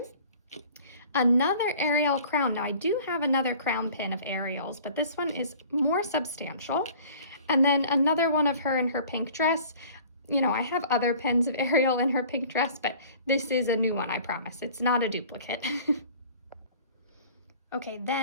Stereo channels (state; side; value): inverted; both; correlation -0.48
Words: Another Ariel crown. Now I do have another crown pin of Ariel's, but this one is more substantial. And then another one of her in her pink dress. You know, I have other pins of Ariel in her pink dress, but this is a new one, I promise. It's not a duplicate. Okay,